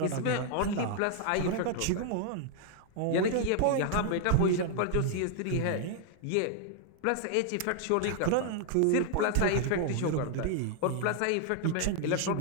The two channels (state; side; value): different; both; correlation 0.00